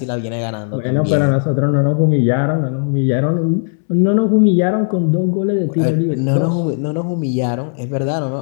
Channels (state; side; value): silent; right; 69 dB below the other